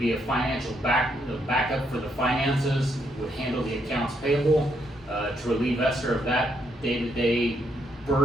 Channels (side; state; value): both; normal; correlation 0.76